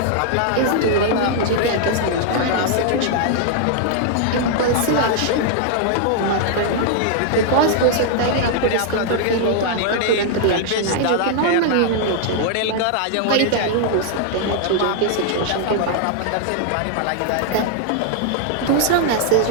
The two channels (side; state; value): both; different; correlation -0.01